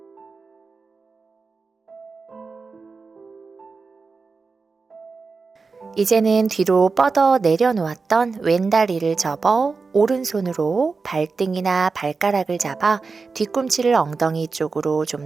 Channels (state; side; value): quieter; left; 4.4 dB